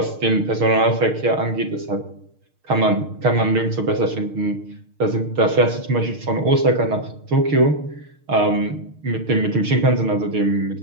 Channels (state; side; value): late; left; 6.5 ms